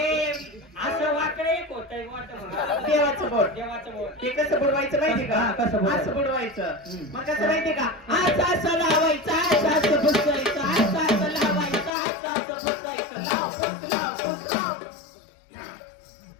असं वाकडे एक होतंय वाटतं देवाचं बोट देवाचं बोट ते कसं बुडवायचं माहिती का हा, कसं बुडवायचं? असं बुडवायचं हम्म. मग कसं माहिती का असं असं लावायचं असं असं पुसायचं असं असं लावायचं असं असं पुसायचं लाव पुस लाव पुस लाव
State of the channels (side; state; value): right; drops out; at 11.9 s